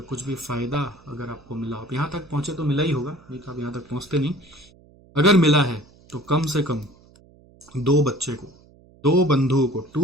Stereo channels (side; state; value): right; noise; hum, 27 dB below the sound